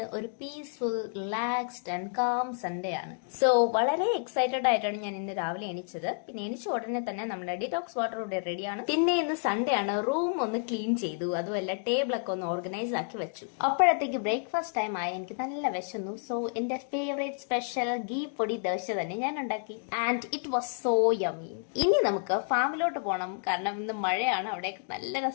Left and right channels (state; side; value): silent; right; 58 dB below the other